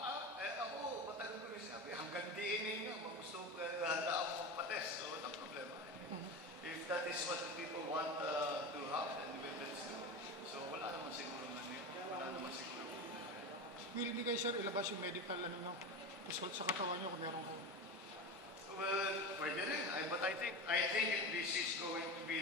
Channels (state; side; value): normal; both; correlation 0.24